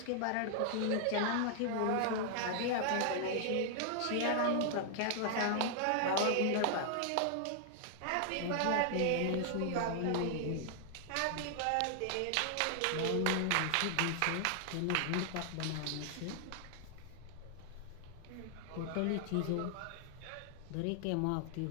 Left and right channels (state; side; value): different; both; correlation 0.00